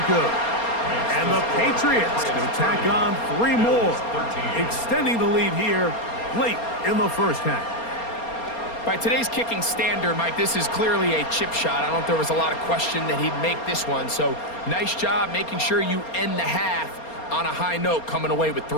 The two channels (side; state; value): right; late; 4.3 ms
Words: good. And the Patriots will tack on 3 more, extending the lead here late in the first half. By today's kicking standard, Mike, this is clearly a chip shot. I don't think there was a lot of question that he'd make this one. So nice job making sure you end the half on a high note, coming away with